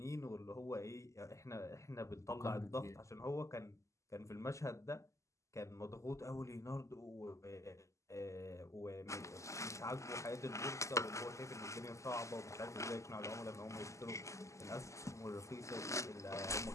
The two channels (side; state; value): right; late; 0.15 ms